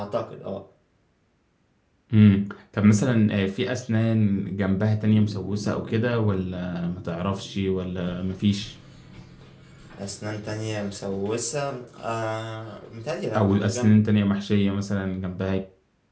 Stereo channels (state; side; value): identical; both; correlation 1.00